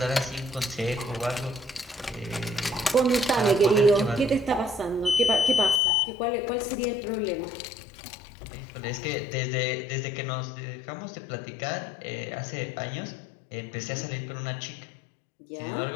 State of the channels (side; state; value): right; drops out; at 5.8 s